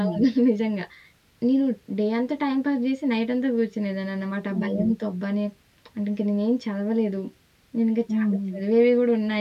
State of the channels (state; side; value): identical; both; correlation 1.00